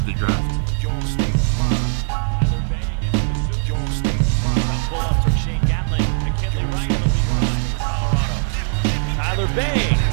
the draft. Tyler Bay,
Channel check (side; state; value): left; silent; digital silence